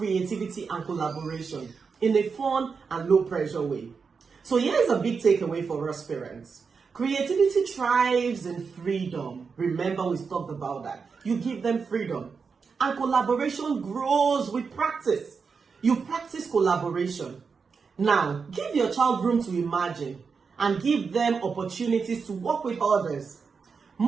and collaboration in a fun and low pressure way. So here's a big takeaway for us parents. Creativity thrives in freedom. Remember, we talked about that. You give them freedom. And collaboration grows with practice. You practice collaboration. Now, give your child room to imagine and give them opportunities to work with others.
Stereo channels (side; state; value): left; quieter; 5.4 dB